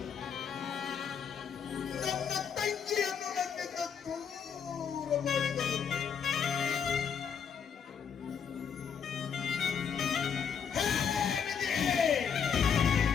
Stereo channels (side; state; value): right; quieter; 7.1 dB